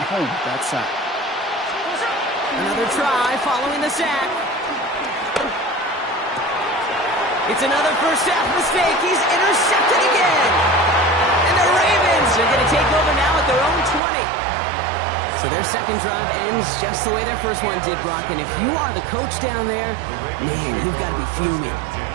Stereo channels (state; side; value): drops out; left; at 14.0 s